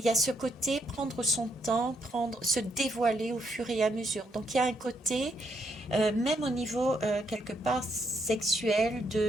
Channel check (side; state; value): both; normal; correlation 0.75